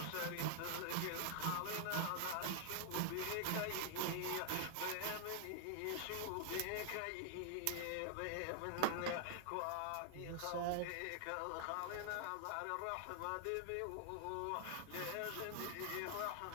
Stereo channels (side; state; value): both; different; correlation 0.00